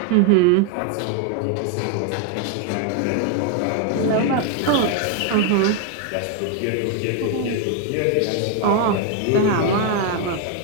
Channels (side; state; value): both; different; correlation 0.01